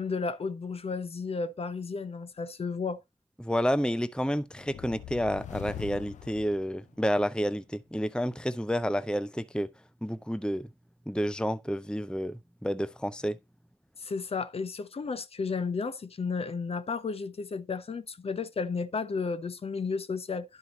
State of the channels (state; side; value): normal; both; correlation 0.84